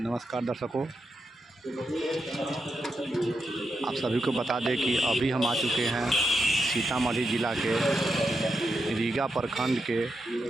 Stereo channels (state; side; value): normal; both; correlation 0.85